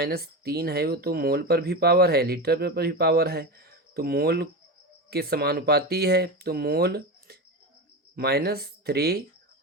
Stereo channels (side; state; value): both; normal; correlation 0.22